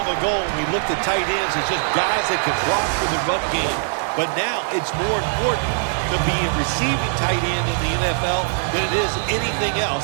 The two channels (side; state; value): left; silent; digital silence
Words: ago when we looked at tight ends as just guys that could block for the run game. But now it's more important to be a receiving tight end in the NFL than it is anything